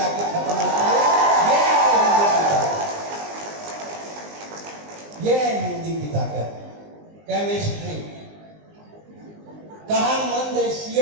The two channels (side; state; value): left; late; 19 ms